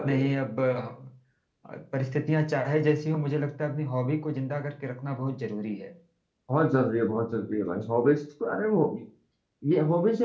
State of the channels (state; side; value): identical; both; correlation 1.00